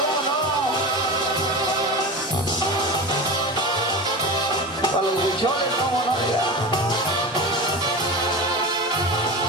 ¿cómo no? Para los bichones, ¿cómo no? Oiga.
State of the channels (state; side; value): normal; both; correlation 0.27